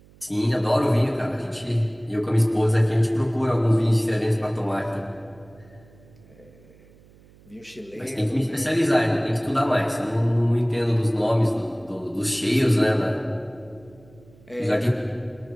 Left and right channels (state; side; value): noise; right; hum, 26 dB below the sound